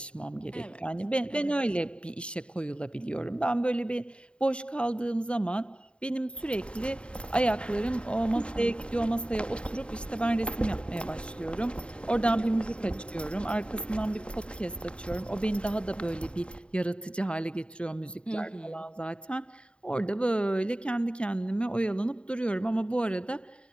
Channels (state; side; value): late; right; 0.055 ms